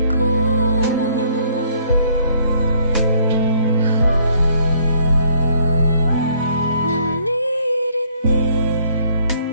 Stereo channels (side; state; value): both; inverted; correlation -0.63